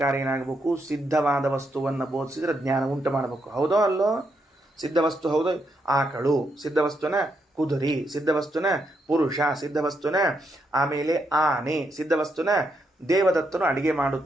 ಏನಾಗಬೇಕು? ಸಿದ್ಧವಾದ ವಸ್ತುವನ್ನು ಬೋಧಿಸಿದ್ರೆ ಜ್ಞಾನ ಉಂಟು ಮಾಡಬೇಕು. ಹೌದೋ ಅಲ್ಲೋ? ಸಿದ್ಧವಸ್ತು ಹೌದು. ಆಕಳು ಸಿದ್ಧವಸ್ತುನ, ಕುದುರೆ ಸಿದ್ಧವಸ್ತುನ, ಪುರುಷ ಸಿದ್ಧವಸ್ತುನ, ಆಮೇಲೆ ಆನೆ ಸಿದ್ಧವಸ್ತುನ, ದೇವದತ್ತನು ಅಡಿಗೆ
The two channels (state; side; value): normal; both; correlation 0.79